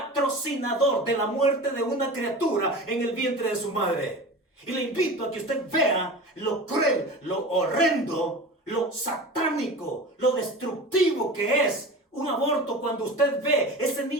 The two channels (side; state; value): both; normal; correlation 0.33